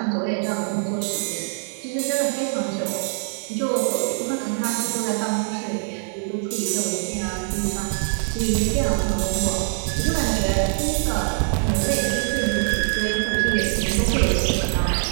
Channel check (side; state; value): left; silent; digital silence